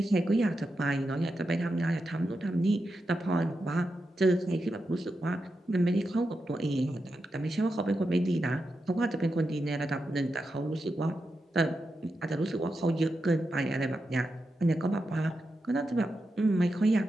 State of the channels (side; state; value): both; normal; correlation 0.88